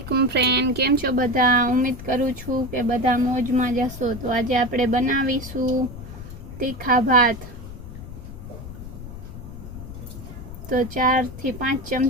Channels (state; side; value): noise; left; rumble, 12 dB below the sound